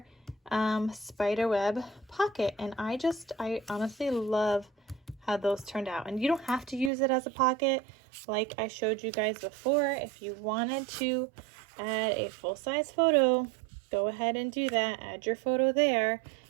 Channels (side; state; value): left; drops out; at 6.9 s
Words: Spiderweb pocket. And I honestly love how those turned out. And you don't have to use it as a pocket like I showed you guys before. If you wanted to add a full-size photo, go ahead and do that. Add your photo there.